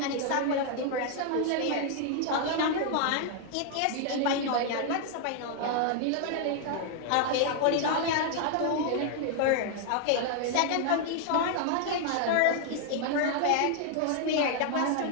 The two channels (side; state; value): both; different; correlation 0.00